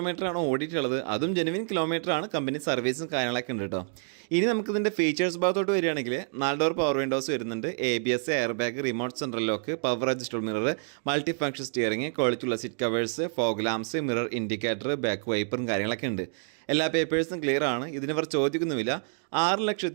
ഓടിയിട്ടുള്ളത്. അതും ജെനുവിൻ കിലോമീറ്ററാണ്. കമ്പനി സർവീസും കാര്യങ്ങളൊക്കെ ഉണ്ട് കേട്ടോ. ഇനി നമുക്കിതിൻ്റെ ഫീച്ചേഴ്സ് ഭാഗത്തോട്ട് വരികയാണെങ്കിൽ 4 ഡോർ പവർ വിൻഡോസ് വരുന്നുണ്ട്. ABS, air bag, remote central lock, power adjustable mirror, multi function steering, ക്വാളിറ്റിയുള്ള seat covers, fog lamps, mirror indicator, back വൈപ്പറും കാര്യങ്ങളൊക്കെ ഉണ്ട്. എല്ലാ പേപ്പേഴ്സും ക്ലിയർ ആണ്. ഇതിനിവർ ചോദിക്കുന്നുമില്ല.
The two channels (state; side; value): silent; left; 56 dB below the other